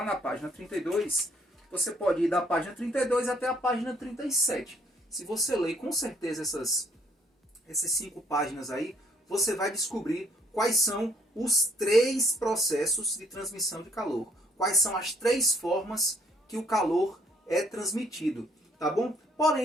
na página 32, você pode ir da página 32 até a página 37. Se você ler com certeza essas 5 páginas aí, você vai descobrir quais são os 3 processos de transmissão de calor. Quais são as 3 formas que o calor é transmitido, tá bom?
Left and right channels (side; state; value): both; normal; correlation 0.65